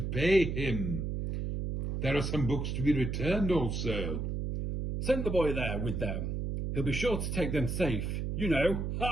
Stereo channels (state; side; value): noise; right; hum, 2 dB below the sound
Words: pay him. There are some books to be returned also. Send the boy there with them. He'll be sure to take them safe. You know.